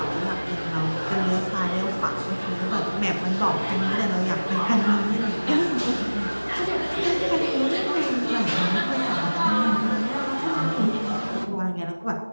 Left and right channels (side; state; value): both; inverted; correlation -1.00